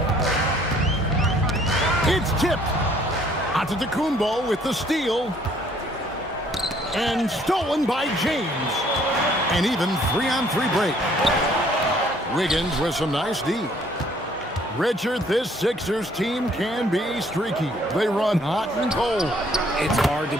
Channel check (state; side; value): normal; both; correlation 0.61